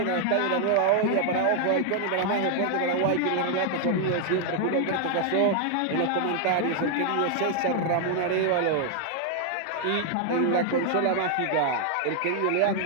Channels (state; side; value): different; both; correlation 0.00